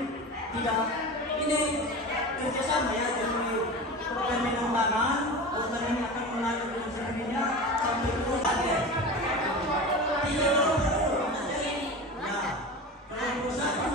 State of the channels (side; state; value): both; normal; correlation 0.29